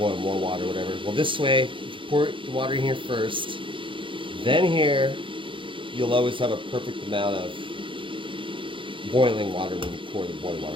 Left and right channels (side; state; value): left; late; 0.25 ms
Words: more water, whatever. Well, this way, if you pour the water in here first, then here, you'll always have a perfect amount of boiling water when you pour the boiling